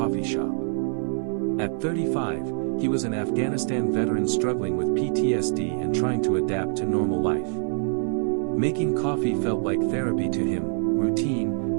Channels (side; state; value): left; silent; 58 dB below the other